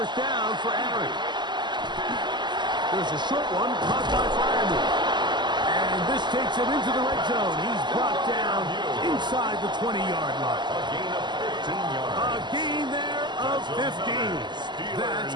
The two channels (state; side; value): late; left; 0.21 ms